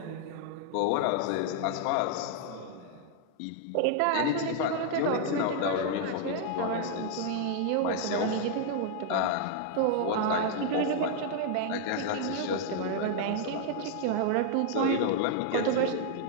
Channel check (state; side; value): different; both; correlation 0.00